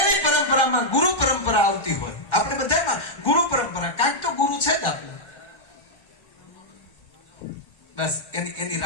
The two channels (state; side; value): late; right; 1.4 ms